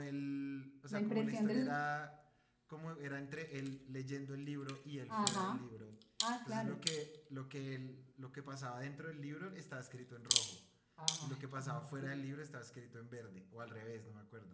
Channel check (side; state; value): both; identical; correlation 1.00